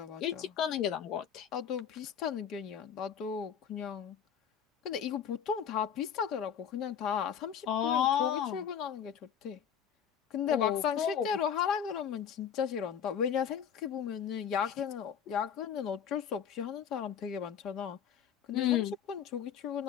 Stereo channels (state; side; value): quieter; right; 8.3 dB